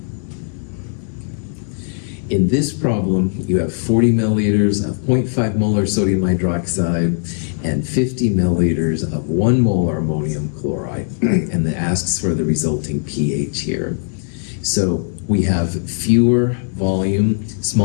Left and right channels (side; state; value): right; silent; 67 dB below the other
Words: that? In this problem, you have 40 milliliters of 0.5 molar sodium hydroxide and 50 milliliters of 1 molar ammonium chloride, and it asks for the resulting pH here. So we have smaller